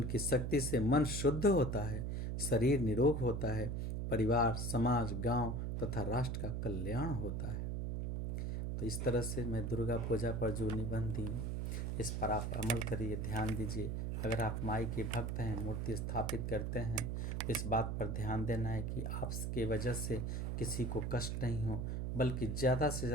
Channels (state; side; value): noise; right; hum, 1 dB below the sound